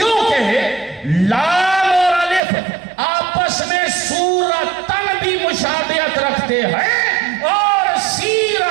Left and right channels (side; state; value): left; drops out; at 2.4 s